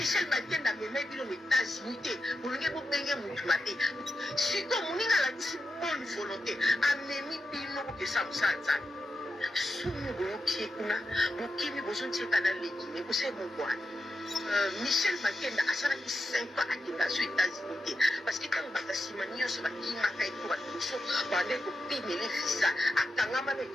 Bakenda meme bilo États-Unis pour le gars benga mutumate si comme moninga la bonne volonté amemi bino que ça musanza sumu boki kuna bokimi bozonti kana legine ko se mokwa Michel Bakenda asala ki 5 ans akenda aux États-Unis parce que quand batasimania so bakima kai ko batuso bande ko pimele visa akangama be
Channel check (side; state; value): both; normal; correlation 0.88